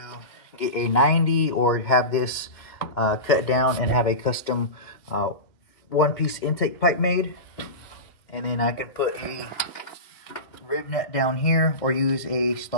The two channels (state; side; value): late; right; 2.1 ms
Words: get a 90 or have this cut down and have a custom one-piece intake pipe made. And then I can put a rib nut down here or use a